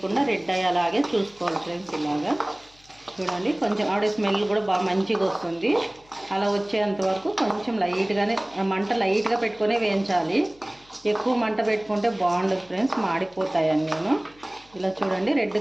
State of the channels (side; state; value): left; noise; hum, 29 dB below the sound